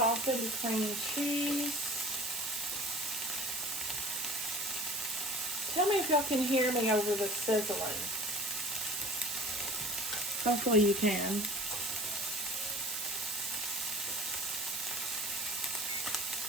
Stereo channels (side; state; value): right; noise; hiss, 3 dB below the sound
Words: cream cheese. Tell me if y'all can hear me over the sizzling. Hopefully you can.